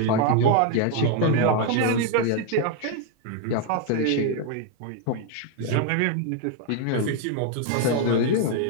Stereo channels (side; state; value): both; different; correlation 0.01